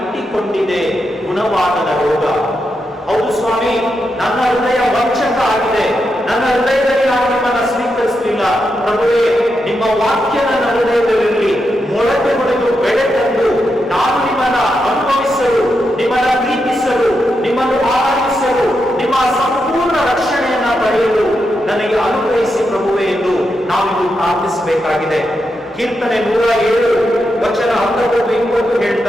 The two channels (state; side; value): normal; both; correlation 0.85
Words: ಗುಣವಾಗದ ರೋಗ. ಹೌದು ಸ್ವಾಮಿ, ನನ್ನ ಹೃದಯ ವಂಚಕ ಆಗಿದೆ, ನನ್ನ ಹೃದಯದಲ್ಲಿ ನಾನು ನಿಮ್ಮನ್ನ ಸ್ವೀಕರಿಸಲಿಲ್ಲ. ಪ್ರಭುವೇ, ನಿಮ್ಮ ವಾಕ್ಯ ನನ್ನ ಹೃದಯದಲ್ಲಿ ಮೊಳಕೆ ಹೊಡೆದು ಬೆಳೆ ತಂದು ನಾನು ನಿಮ್ಮನ್ನ ಅನುಭವಿಸಲು, ನಿಮ್ಮನ್ನ ಪ್ರೀತಿಸಲು, ನಿಮ್ಮನ್ನು ಆರಾಧಿಸಲು, ನಿಮ್ಮ ಸಂಪೂರ್ಣ ರಕ್ಷಣೆಯನ್ನ ಪಡೆಯಲು ನನಗೆ ಅನುಗ್ರಹಿಸಿ ಪ್ರಭುವೇ ಎಂದು ನಾವಿದು ಪ್ರಾರ್ಥಿಸಬೇಕಾಗಿದೆ. ಕೀರ್ತನೆ 107 ವಚನ 19